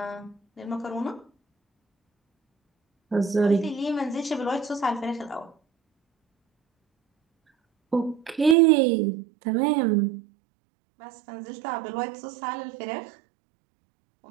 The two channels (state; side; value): drops out; left; at 8.6 s